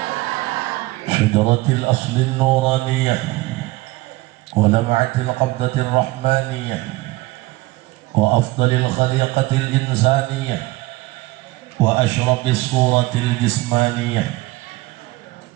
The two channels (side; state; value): left; quieter; 20.1 dB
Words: شجرة الأصل النورانية ولمعة القبضة الرحمانية وأفضل الخليقة الإنسانية وأشرف الصورة الجسمانية